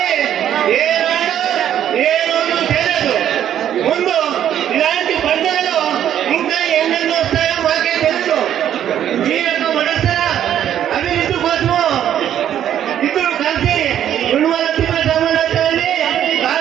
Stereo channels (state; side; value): quieter; left; 10.5 dB